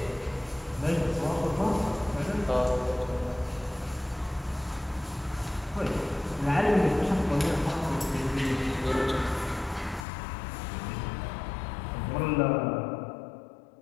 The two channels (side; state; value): right; drops out; at 10.1 s